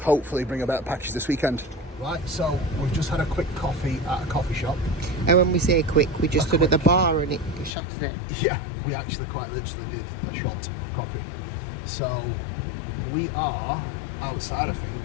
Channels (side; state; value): right; drops out; at 7.7 s